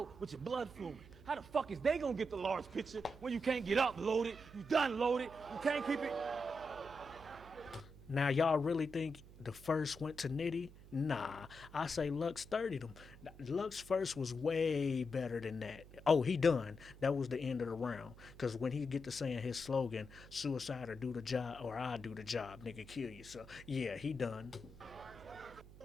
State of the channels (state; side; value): noise; right; hum, 19 dB below the sound